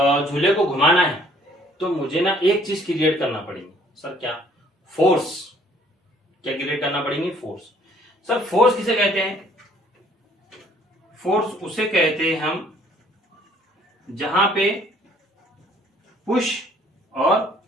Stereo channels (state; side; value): normal; both; correlation 0.60